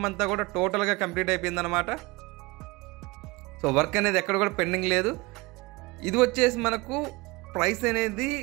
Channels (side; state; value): left; quieter; 23.7 dB